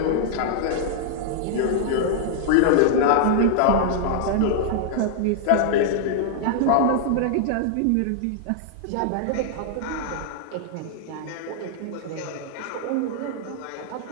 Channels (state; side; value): different; both; correlation -0.01